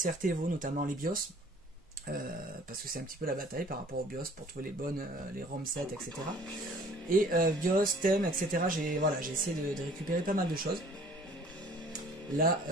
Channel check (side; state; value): both; normal; correlation 0.52